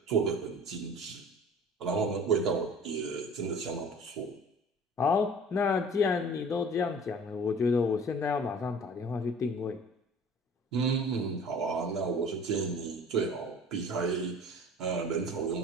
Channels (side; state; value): both; normal; correlation 0.45